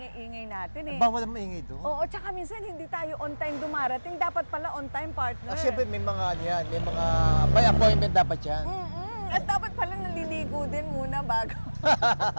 natin eh. Bawal ang maingay doon. Oo, tsaka minsan hindi tayo on time dumarating. Dapat pala on time, partner. Siyempre may mga may mga by appointment dapat yan. At dapat pala naliligo din muna bago.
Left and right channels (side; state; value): both; inverted; correlation -1.00